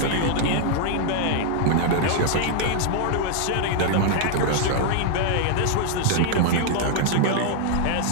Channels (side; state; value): both; different; correlation 0.00